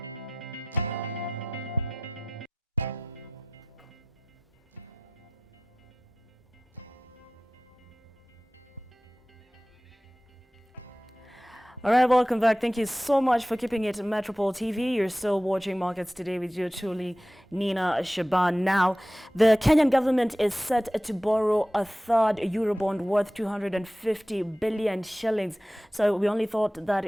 right, welcome back. Thank you so much for keeping it Metropole TV. You're still watching Markets Today with your truly, Nina Shaban. Now, the Kenyan government is set to borrow a third Eurobond worth 250 billion shillings. So we only thought that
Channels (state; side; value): normal; both; correlation 0.93